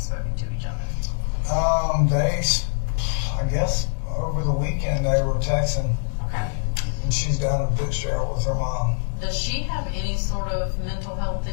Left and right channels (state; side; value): silent; right; digital silence